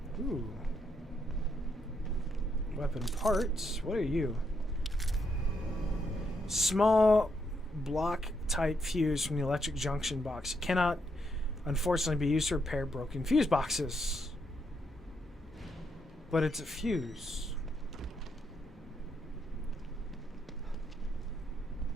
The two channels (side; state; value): both; normal; correlation 0.78